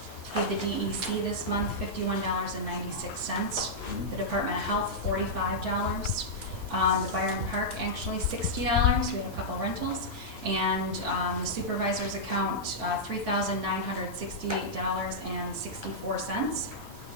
paid the DEC this month $51.96. The Department of Health, $45. The Byron Park, actually $60. We have a couple rentals. And the supervisor's account, $3,968.64.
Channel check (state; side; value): normal; both; correlation -0.09